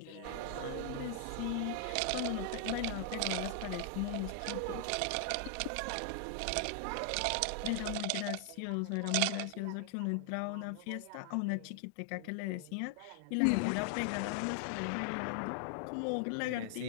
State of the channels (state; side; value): different; both; correlation 0.00